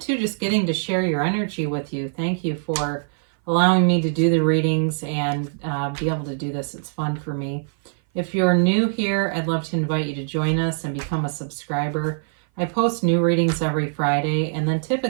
just getting to share your energy with you. Thank you for allowing me to do the readings and be able to do this. It's fun for me. If you're new here, I'd love to invite you to join us and become a subscriber. I post new readings every Friday and then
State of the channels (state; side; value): silent; left; 58 dB below the other